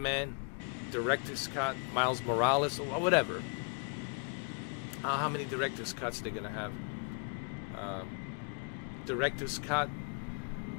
Director's Cut, Miles Morales, or whatever. How many Director's Cuts they're gonna have? Director's Cut,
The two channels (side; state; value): right; quieter; 38.3 dB